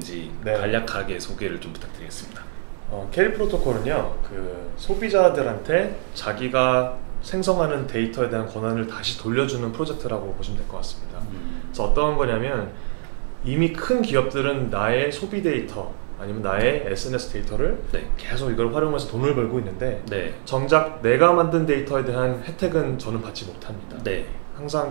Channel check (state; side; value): silent; left; 63 dB below the other